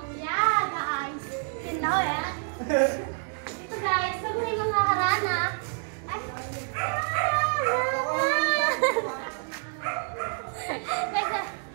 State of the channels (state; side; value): silent; left; 59 dB below the other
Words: Yeah, guys. You know it. So guys, pag may mga harana, ay,